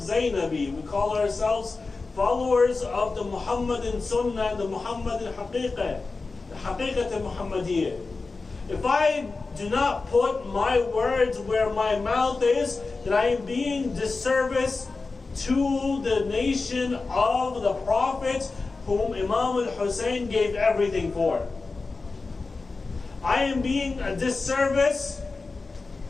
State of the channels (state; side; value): quieter; right; 3.9 dB